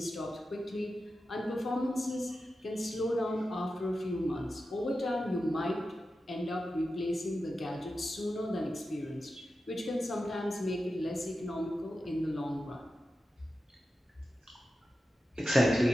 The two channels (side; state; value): both; normal; correlation 0.92